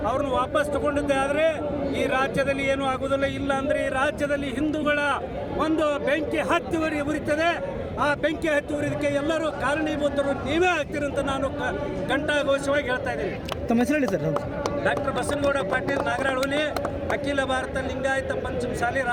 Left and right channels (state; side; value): identical; both; correlation 1.00